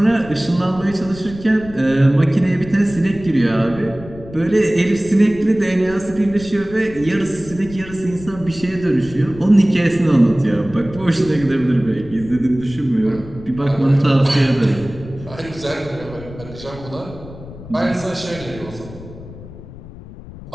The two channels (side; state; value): left; noise; rumble, 16 dB below the sound